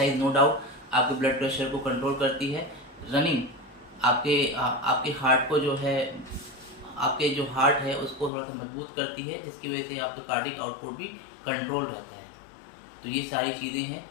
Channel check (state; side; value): drops out; right; at 8.3 s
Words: नो डाउट आपके ब्लड प्रेशर को कंट्रोल करती है। रनिंग आपके हार्ट को जो है, आपके जो हार्ट है उसको थोड़ा सा मजबूत करती है, जिसकी वजह से आपका कार्डिक आउटपुट भी कंट्रोल रहता है। तो ये सारी चीज़ें हैं,